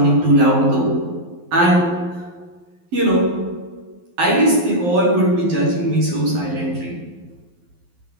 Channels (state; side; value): late; left; 12 ms